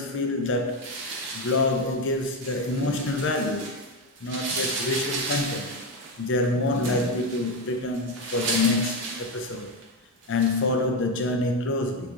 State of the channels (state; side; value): normal; both; correlation 0.12